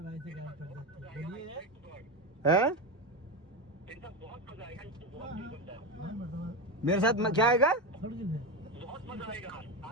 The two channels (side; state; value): both; normal; correlation 0.15